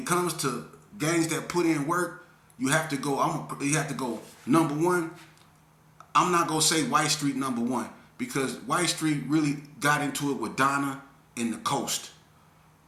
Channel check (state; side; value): identical; both; correlation 1.00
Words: comes to gangs that put in work, you have to go number one. I'm not gonna say White Street number one because White Street really got into it with Donna and the Coast.